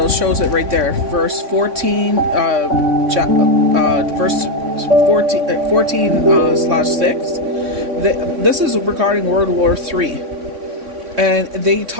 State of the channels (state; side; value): late; left; 3.6 ms